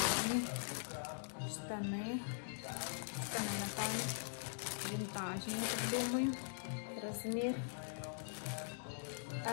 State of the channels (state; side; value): silent; right; digital silence